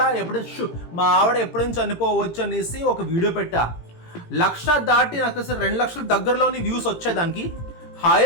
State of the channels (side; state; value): right; late; 18 ms